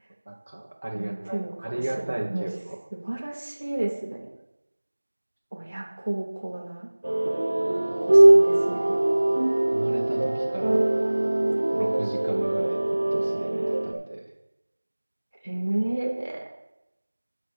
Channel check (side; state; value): both; inverted; correlation -1.00